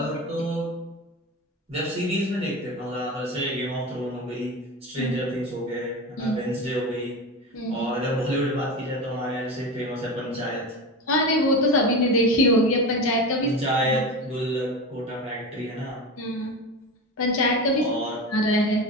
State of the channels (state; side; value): normal; both; correlation 0.26